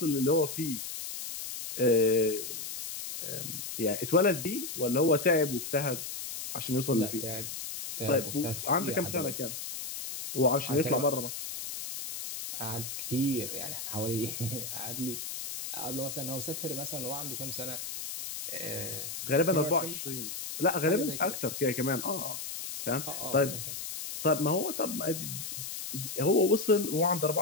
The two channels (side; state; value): left; noise; hiss, 7 dB below the sound